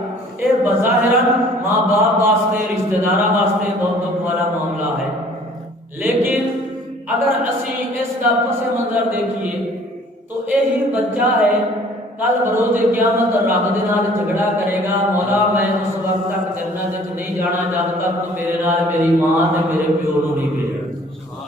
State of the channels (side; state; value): both; normal; correlation 0.54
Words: اے بظاہراً ماں باپ واسطے رشتہ داراں واسطے بہت دکھ والا معاملہ ہے، لیکن اگر اسی اس کا پس منظر دیکھیے تو یہی بچہ ہے کل بروز قیامت رب دے نال جھگڑا کرے گا، مولا میں اس وقت تک جنت وچ نہیں جانا جب تک تو میرے نال میری ماں تے میرے پیو نوں نہیں بھیجنا۔